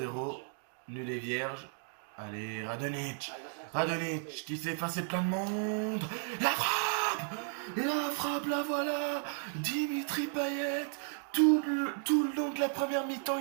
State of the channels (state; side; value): silent; left; 55 dB below the other